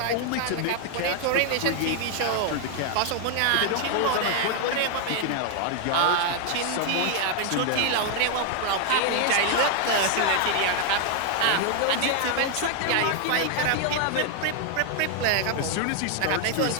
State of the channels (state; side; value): different; both; correlation 0.00